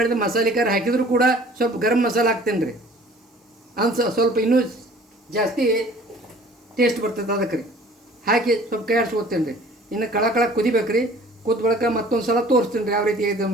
ಮಸಾಲೆ ಖಾರ ಹಾಕಿದರೂ ಕೂಡ ಸ್ವಲ್ಪ ಗರಂ ಮಸಾಲೆ ಹಾಕ್ತೇನೆ ರೀ, ಸ್ವಲ್ಪ ಇನ್ನೂ ಜಾಸ್ತಿ ಟೇಸ್ಟ್ ಬರ್ತದೆ ಅದಕ್ಕೆ ರೀ. ಹಾಕಿ ಸ್ವಲ್ಪ ಕೈ ಆಡಿಸ್ಕೊತೇನೆ ರೀ. ಇನ್ನು ಕಳ ಕುದಿಬೇಕು ರೀ. ಕುದ್ದ ಬಳಿಕ ಮತ್ತೊಂದು ಸಲ ತೋರಿಸ್ತೀನಿ ರೀ ಯಾವ ರೀತಿ ಇದೆ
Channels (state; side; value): normal; both; correlation 0.50